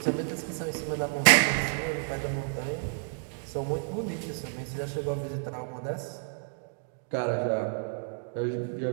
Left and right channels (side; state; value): left; silent; digital silence